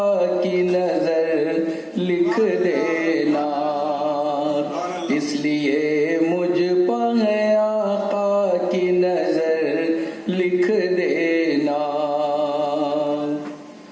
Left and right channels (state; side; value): identical; both; correlation 1.00